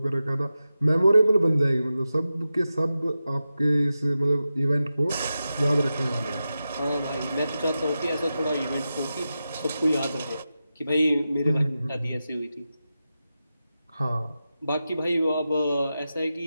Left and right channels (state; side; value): inverted; both; correlation -0.92